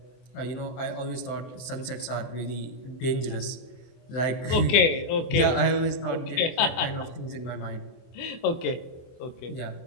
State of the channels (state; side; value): late; right; 24 ms